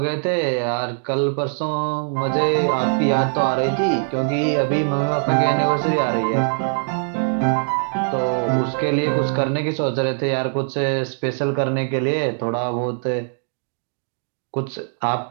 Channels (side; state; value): left; silent; digital silence